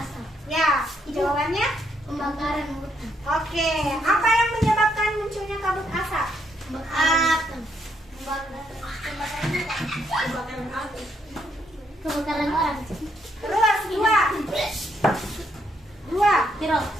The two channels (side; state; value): both; normal; correlation 0.74